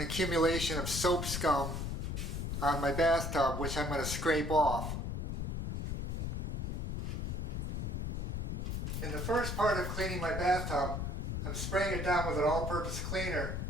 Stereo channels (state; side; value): noise; left; rumble, 2 dB below the sound